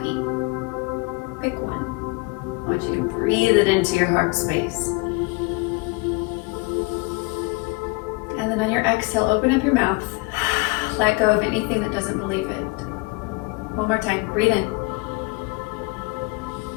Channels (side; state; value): right; quieter; 25.8 dB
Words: Pick one. I want you to breathe it into your heart space. And then on your exhale, open up your mouth. Let go of anything that doesn't believe it. One more time. Breathe in.